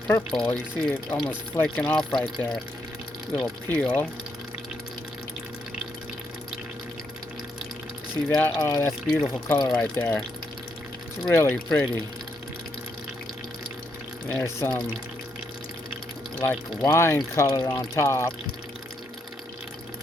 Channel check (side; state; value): both; normal; correlation 0.77